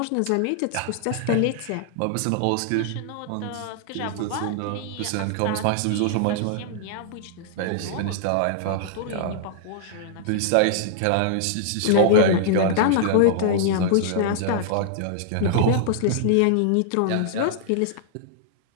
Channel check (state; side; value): different; both; correlation -0.01